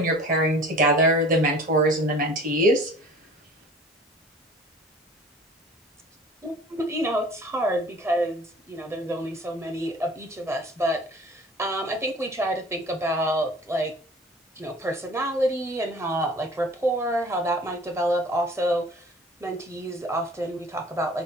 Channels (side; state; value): both; normal; correlation 0.45